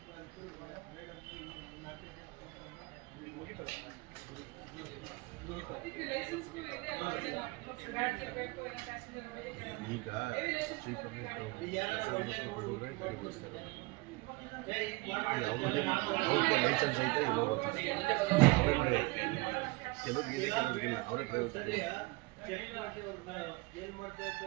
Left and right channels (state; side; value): quieter; left; 24.9 dB